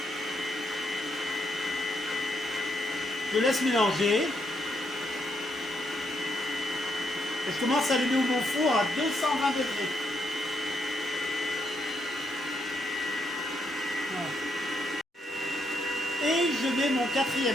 Je laisse mélanger. Et je commence à allumer mon four à 220 degrés. Voilà. Et je mets mon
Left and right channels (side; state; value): both; normal; correlation 0.77